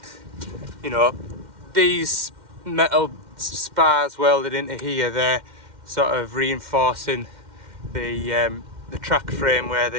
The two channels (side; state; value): left; late; 2.1 ms